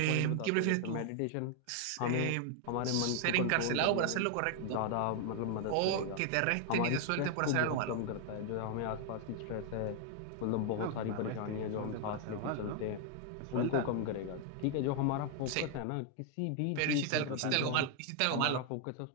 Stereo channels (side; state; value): both; different; correlation 0.00